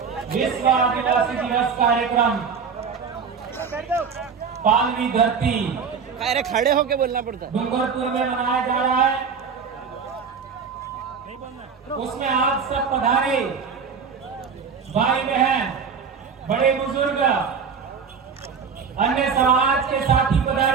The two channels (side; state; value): left; quieter; 6.0 dB